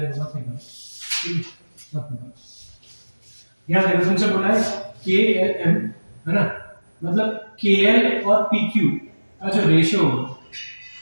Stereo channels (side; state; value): both; inverted; correlation -1.00